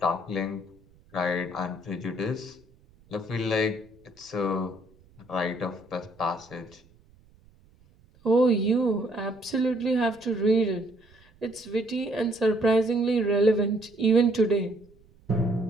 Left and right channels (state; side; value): noise; right; rumble, 29 dB below the sound